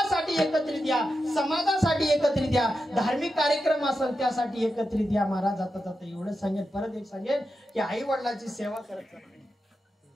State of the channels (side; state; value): both; normal; correlation 0.89